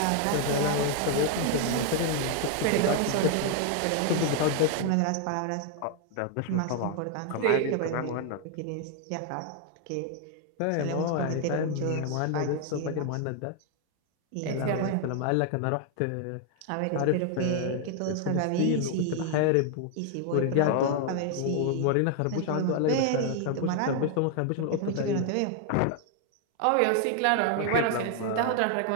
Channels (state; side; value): different; both; correlation 0.00